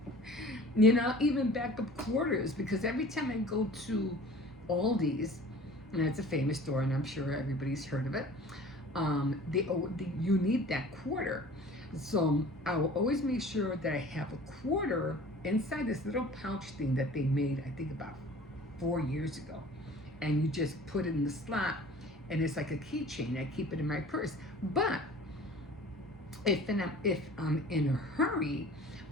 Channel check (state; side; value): normal; both; correlation 0.45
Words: Even backup quarters, because every time I go to Aldi's, and it's a famous store, and I'm sure everybody's heard of it. You need that quarter, so I will always make sure that I have a quarter inside this little pouch thing that they made, I think about 4 years ago, and you just put it in the slot, and it's like a keychain. I keep it in my purse, but if I'm in a hurry,